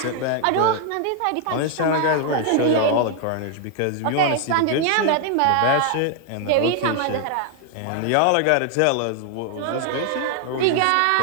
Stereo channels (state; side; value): different; both; correlation 0.00